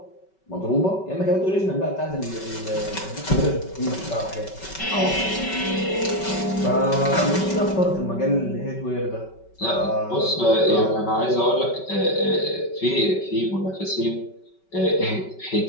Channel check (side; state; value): right; late; 5.3 ms